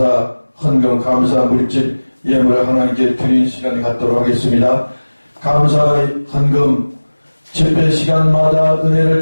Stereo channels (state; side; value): inverted; both; correlation -1.00